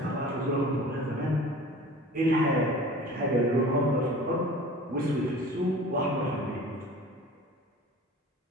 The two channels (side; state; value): both; normal; correlation 0.41